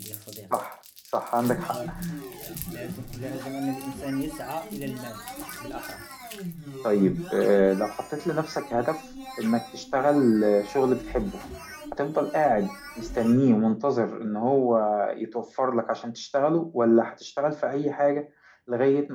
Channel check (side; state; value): both; identical; correlation 1.00